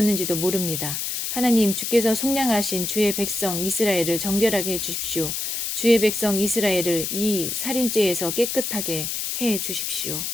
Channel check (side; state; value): left; noise; hiss, 3 dB below the sound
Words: 모릅니다. 하나님 주께서 속량하신 주의 백성 이스라엘을 정결하게 해주십시오. 주의 백성 이스라엘을 이 살인죄에서 깨끗하게 해주십시오.